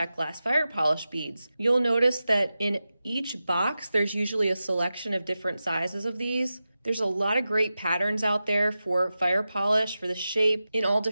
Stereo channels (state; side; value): inverted; both; correlation -0.93